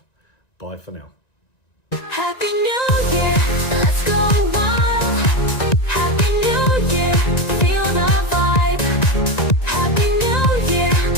Bye for now. Happy New Year.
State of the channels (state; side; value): late; right; 1.9 ms